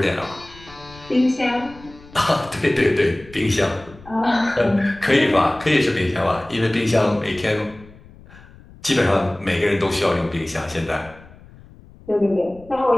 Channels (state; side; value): noise; left; rumble, 22 dB below the sound